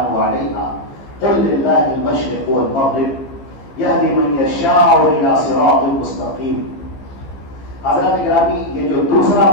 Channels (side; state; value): right; late; 15 ms